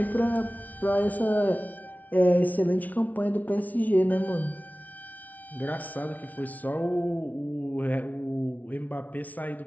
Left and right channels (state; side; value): late; right; 0.074 ms